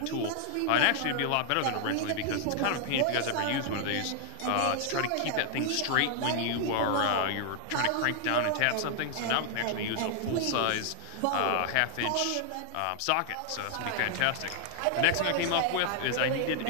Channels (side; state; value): both; different; correlation 0.00